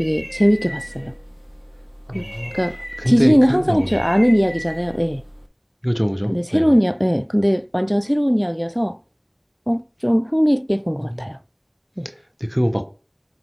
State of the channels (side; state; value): both; identical; correlation 1.00